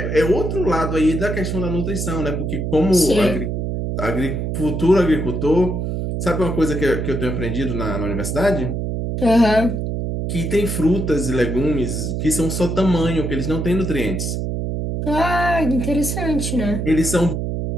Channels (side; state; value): right; noise; hum, 2 dB below the sound